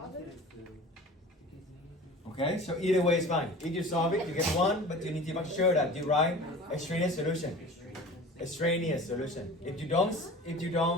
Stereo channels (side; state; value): both; normal; correlation 0.39